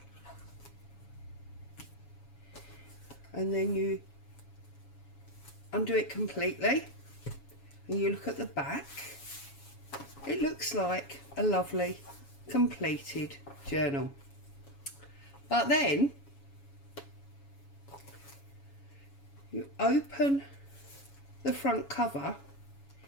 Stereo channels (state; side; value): late; right; 7.2 ms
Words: and then you undo it completely and you look at the back, it looks like a lovely completed journal. But then you open the front cover